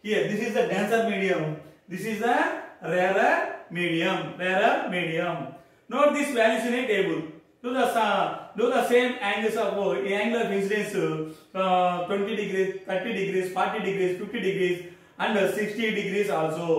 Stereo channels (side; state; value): both; identical; correlation 1.00